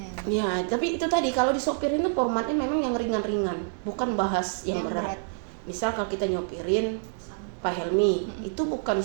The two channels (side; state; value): left; silent; digital silence